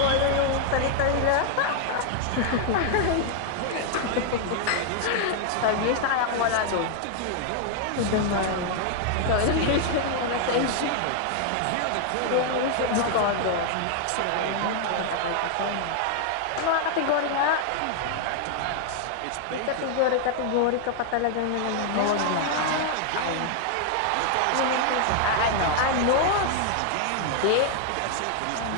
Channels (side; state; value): both; different; correlation 0.00